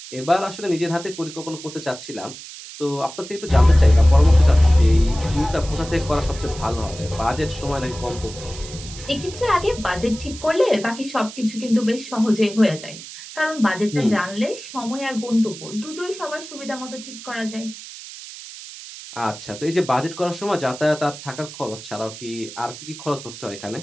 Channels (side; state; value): right; noise; hiss, 14 dB below the sound